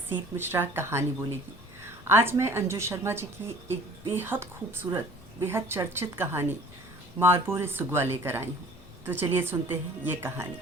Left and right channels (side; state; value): left; noise; hum, 26 dB below the sound